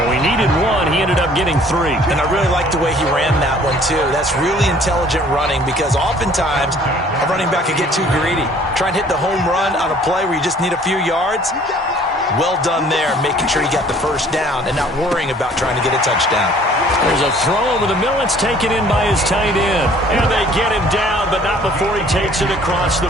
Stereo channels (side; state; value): both; normal; correlation 0.55